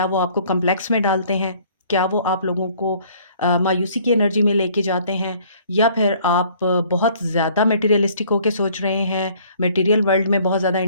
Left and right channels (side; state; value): both; inverted; correlation -0.57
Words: वो आपको कॉम्प्लेक्स में डालते हैं? क्या वो आप लोगों को मायूसी की एनर्जी में लेके जाते हैं? या फिर आप बहुत ज़्यादा मटेरियलिस्टिक होके सोच रहे हैं, मटेरियल वर्ल्ड में बहुत ज़्यादा